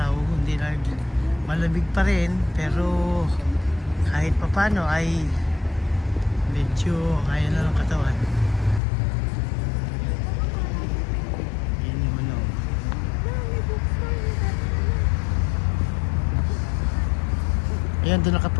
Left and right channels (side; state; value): right; drops out; at 8.8 s